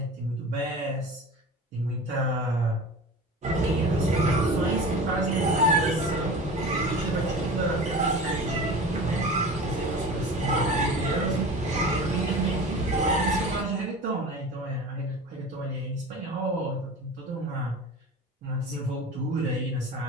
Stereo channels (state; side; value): normal; both; correlation 0.35